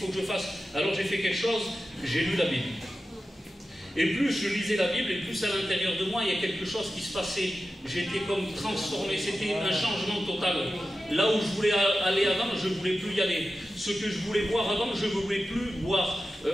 que je fasse? Alors j'ai fait quelque chose, j'ai lu la Bible. Et plus je lisais la Bible, et plus à l'intérieur de moi, il y a quelque chose qui se passait. J'étais comme transformé, c'était un changement total. Là où je voulais aller avant, je ne voulais plus y aller. Ce que je voulais boire avant, je ne voulais plus boire.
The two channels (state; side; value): normal; both; correlation 0.93